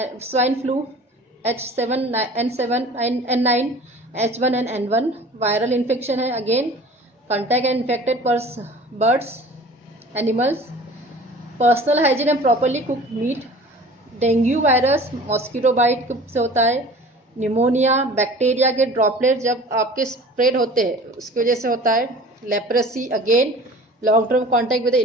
swine flu, H7N7 N9, H1 and N1, viral infection है again, contact and infected birds, animals, personal hygiene and properly cooked meat. Dengue virus mosquito bite से होता है. Pneumonia, bacteria के droplet जब आपके spread होते हैं उसकी वजह से होता है. Leprosy again long term contact with the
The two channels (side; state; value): both; normal; correlation 0.44